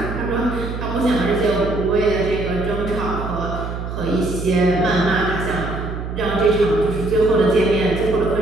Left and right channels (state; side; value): noise; right; hum, 6 dB below the sound